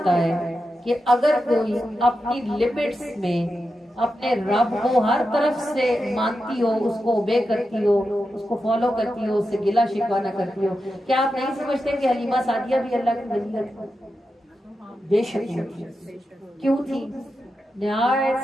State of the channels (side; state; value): both; normal; correlation 0.89